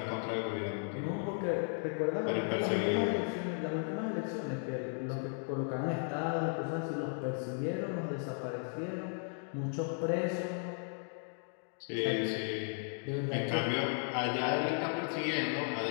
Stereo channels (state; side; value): silent; right; 54 dB below the other